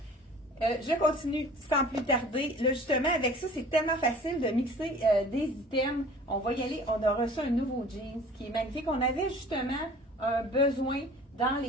Je continue sans plus tarder. Là, justement, avec ça, c'est tellement facile de mixer des items. On va y aller. On a reçu un nouveau jeans qui est magnifique. On avait justement un besoin dans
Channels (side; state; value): both; normal; correlation 0.46